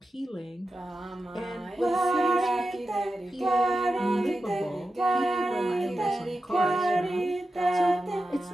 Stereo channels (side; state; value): both; normal; correlation 0.91